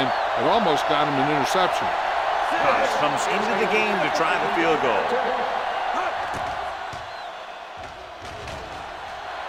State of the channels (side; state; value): both; identical; correlation 1.00